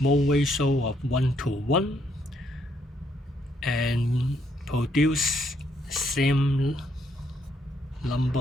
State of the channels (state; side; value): normal; both; correlation 0.73